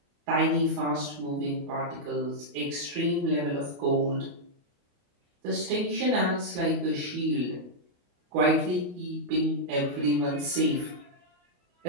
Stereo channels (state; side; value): late; left; 28 ms